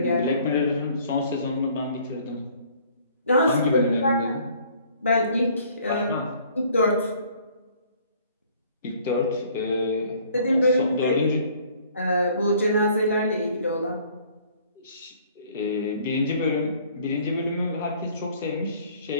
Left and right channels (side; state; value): both; inverted; correlation -0.57